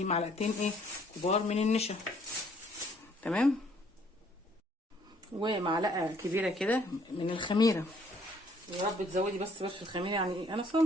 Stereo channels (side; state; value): both; normal; correlation 0.63